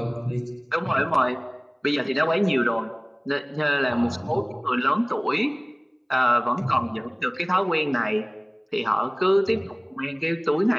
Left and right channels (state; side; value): identical; both; correlation 1.00